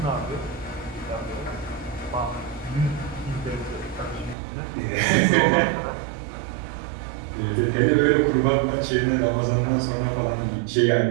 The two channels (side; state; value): left; drops out; at 4.4 s